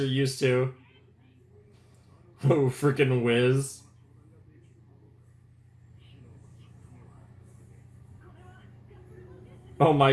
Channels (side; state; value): both; identical; correlation 1.00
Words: used to. Oh, freaking whiz. Oh